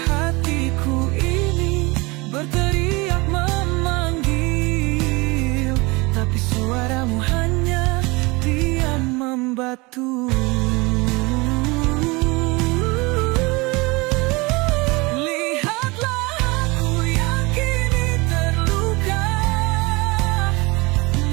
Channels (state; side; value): quieter; left; 25.0 dB